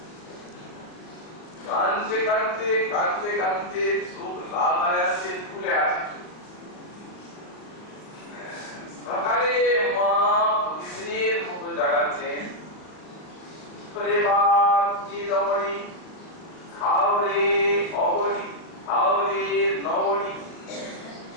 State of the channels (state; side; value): late; right; 39 ms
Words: কাঁদতে কাঁদতে কাঁদতে কাঁদতে চোখ লাল হয়ে আছে ফুলে আছে সকালে মা প্রতিদিনের মতো জাগাচ্ছেন করে বাপ রমণী খাও রে অবনী খাও রে নবনী